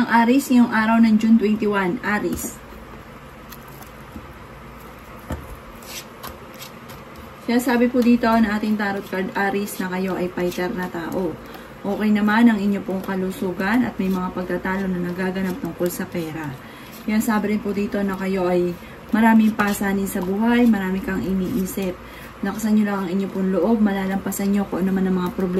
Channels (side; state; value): both; identical; correlation 1.00